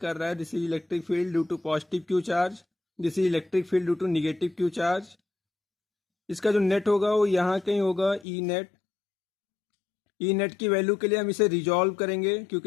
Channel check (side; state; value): right; drops out; at 8.2 s